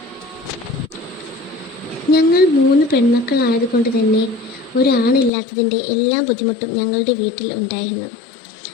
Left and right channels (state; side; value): drops out; right; at 5.3 s